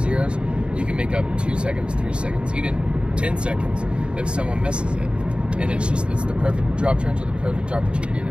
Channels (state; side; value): late; left; 0.054 ms